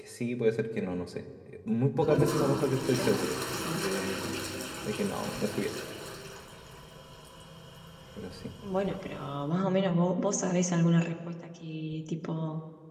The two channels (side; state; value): both; identical; correlation 1.00